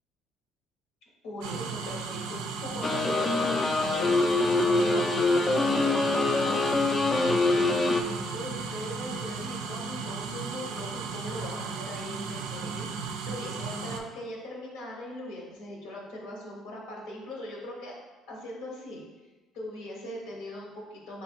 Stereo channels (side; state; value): both; normal; correlation 0.74